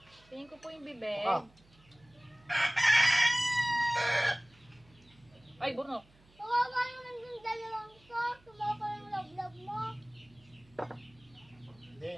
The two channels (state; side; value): noise; right; hum, 29 dB below the sound